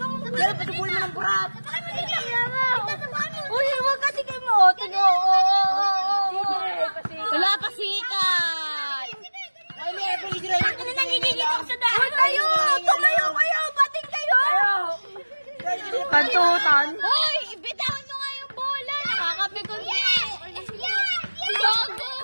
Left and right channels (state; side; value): inverted; both; correlation -1.00